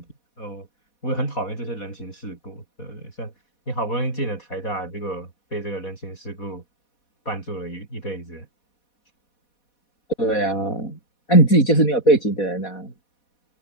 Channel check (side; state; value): right; late; 4.1 ms